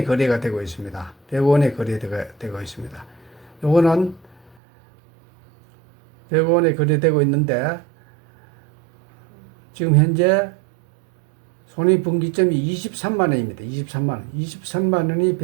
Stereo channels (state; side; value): drops out; left; at 4.5 s